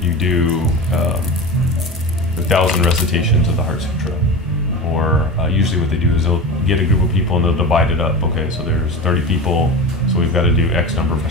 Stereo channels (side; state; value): both; normal; correlation 0.28